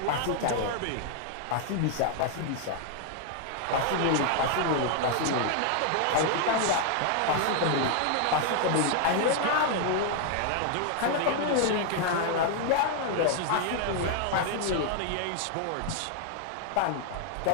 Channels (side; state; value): both; different; correlation 0.00